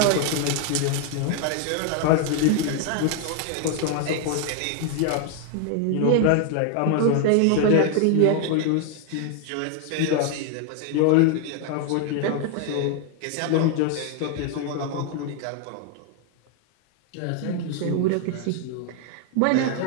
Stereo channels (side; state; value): both; different; correlation 0.00